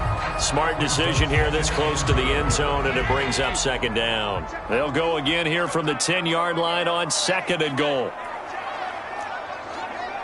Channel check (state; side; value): identical; both; correlation 1.00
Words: Smart decision here this close to the end zone, and it brings up 2nd down. They'll go again here from the 10-yard line on 2nd and goal.